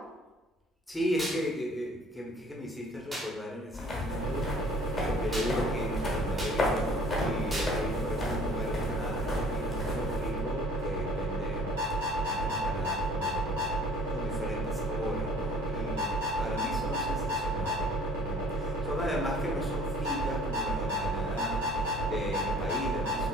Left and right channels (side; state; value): both; normal; correlation 0.52